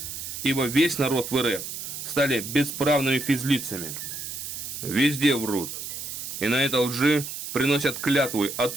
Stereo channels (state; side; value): noise; right; hiss, 7 dB below the sound